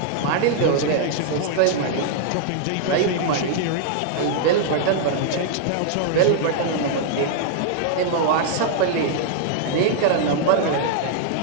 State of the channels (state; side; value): different; both; correlation -0.01